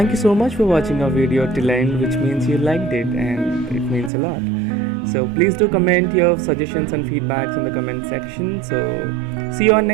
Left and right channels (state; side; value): drops out; left; at 4.1 s